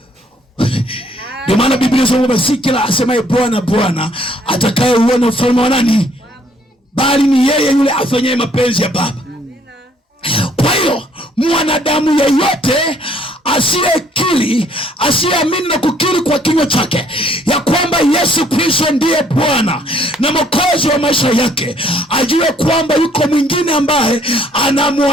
ndio maana Biblia inasema si kila asemaye Bwana Bwana atakayeuona ufalme wa nani, bali ni yeye yule afanyaye mapenzi ya Baba. Kwa hiyo mwanadamu yeyote asiyekiri kukiri, asiyeamini na kukiri kwa kinywa chake ya kwamba Yesu Kristo ndiye Bwana na Mwokozi wa maisha yake, ajue kwamba yuko mwingine ambaye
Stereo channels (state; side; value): normal; both; correlation 0.63